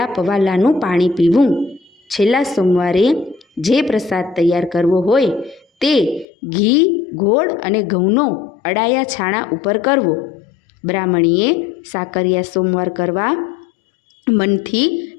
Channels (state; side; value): drops out; right; at 6.2 s